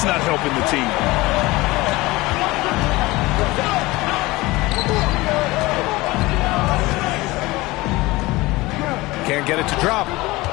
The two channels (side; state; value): right; quieter; 20.8 dB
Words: not helping the team. Can't get it to drop.